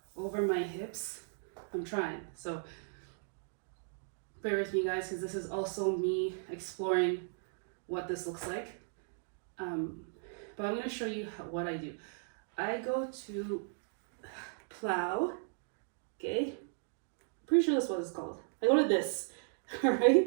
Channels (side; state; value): left; silent; digital silence